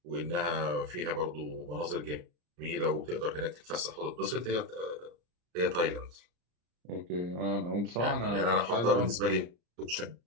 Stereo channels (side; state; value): left; late; 34 ms